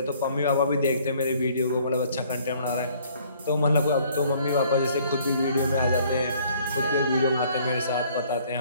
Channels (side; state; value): both; inverted; correlation -0.59